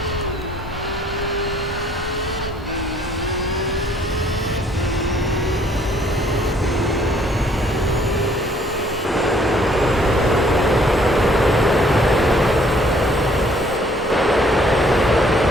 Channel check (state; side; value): normal; both; correlation 0.61